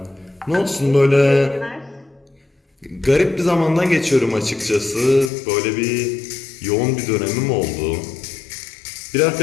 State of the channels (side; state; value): right; drops out; at 5.3 s